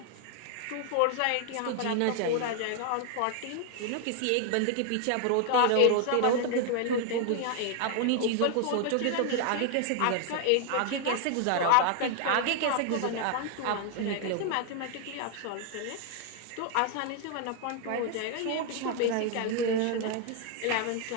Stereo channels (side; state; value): both; different; correlation 0.00